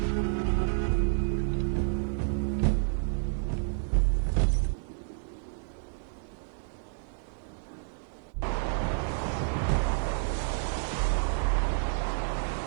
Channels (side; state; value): left; silent; digital silence